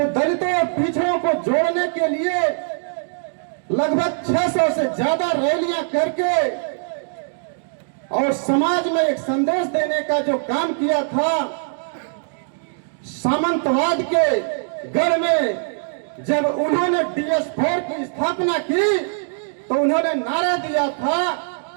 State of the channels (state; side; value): silent; left; digital silence